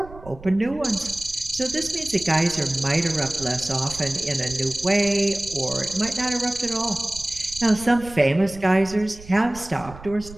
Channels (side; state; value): right; noise; rumble, 17 dB below the sound